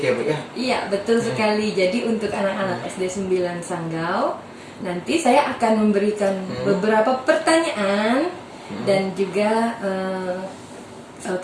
ya Bu ya. Iya, betul sekali. Jadi untuk anak-anak SD 9 Sanggau, nanti saya akan memberikan beberapa pertanyaan dan juga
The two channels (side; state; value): both; identical; correlation 1.00